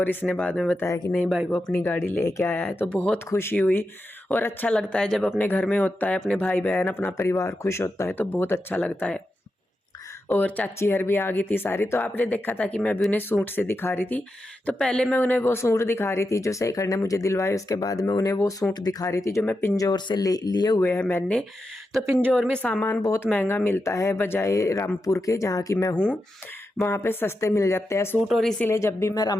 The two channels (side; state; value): both; normal; correlation 0.88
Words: इसने बाद में बताया कि नहीं भाई वो अपनी गाड़ी लेके आया है। तो बहुत खुशी हुई, और अच्छा लगता है जब अपने घर में होता है, अपने भाई बहन अपना परिवार खुश होता है तो बहुत अच्छा लगता है। और चाची हर भी आ गई थी सारी। तो आपने देखा था कि मैं अभी उन्हें सूट से दिखा रही थी, तो पहले मैं उन्हें वो सूट दिखा रही थी जो शेखर ने मुझे दिलवाए, उसके बाद मैं उन्हें वो सूट दिखा रही थी जो मैं पिंजौर से लिए हुए हैं मैंने। तो पिंजौर में सामान बहुत महंगा मिलता है, बजाय रामपुर के जहाँ की मैं हूँ, वहाँ पे सस्ते मिल जाते हैं सूट। और इसीलिए जब भी मैं